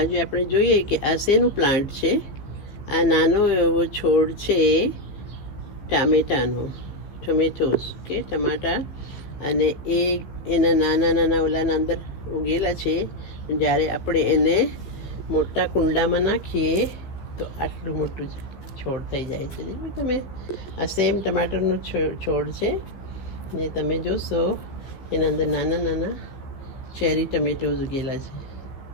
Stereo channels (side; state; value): right; late; 15 ms